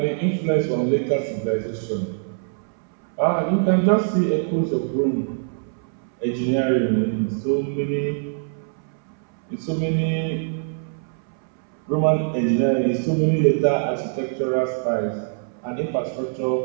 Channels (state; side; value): silent; left; 63 dB below the other